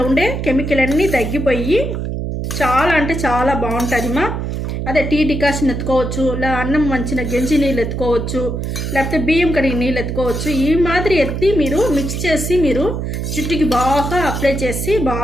ఉండే కెమికల్ అన్నీ తగ్గిపోయి చాలా అంటే చాలా బాగుంటుంది మా. అదే టీ డికాషన్ ఎత్తుకోవచ్చు, ఇలా అన్నం వంచిన గెంజి నీళ్ళు ఎత్తుకోవచ్చు, లేకపోతే బియ్యం కడిగి నీళ్ళు ఎత్తుకోవచ్చు. ఈ మాదిరి ఎత్తి మీరు మిక్స్ చేసి మీరు జుట్టుకి బాగా అప్లై చేసి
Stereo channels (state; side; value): noise; right; hum, 3 dB below the sound